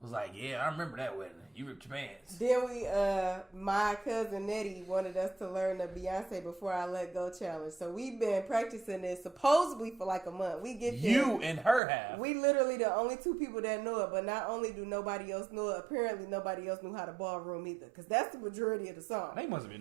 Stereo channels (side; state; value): left; drops out; at 11.8 s